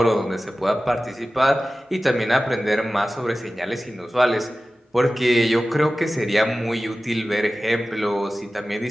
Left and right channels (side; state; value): both; normal; correlation 0.96